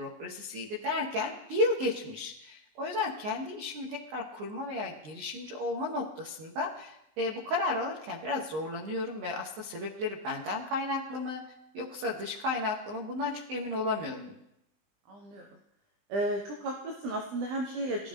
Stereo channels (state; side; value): late; left; 19 ms